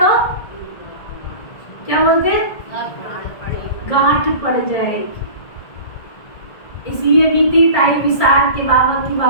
क्या बोलते हैं? गांठ पड़ जाएगी। इसलिए बीती ताई विसार के बाबा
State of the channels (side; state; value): right; late; 1.7 ms